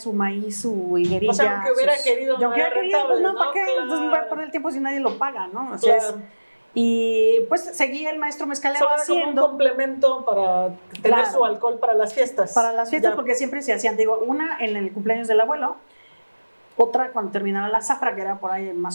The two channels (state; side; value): inverted; both; correlation -1.00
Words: maíz, su higuerilla. O sea, aunque hubiera querido, y no aunque era hubiera querido, pues rentable, no, ¿para ¿no? qué? Claro. Entonces voy a perder el tiempo si nadie lo paga, ¿no? O sea, Claro. y pues seguía el maestro mezcalero Solo era como un haciendo complemento para tener Claro. su alcohol para las fiestas. para las fiestas, Ya. porque siempre se hacían, digo, una en el cumpleaños del abuelo, otra cuando terminaba la zafra, que era por ahí